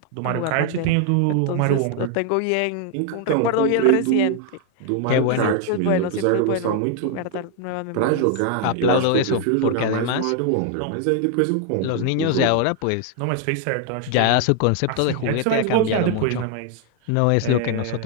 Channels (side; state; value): both; different; correlation 0.00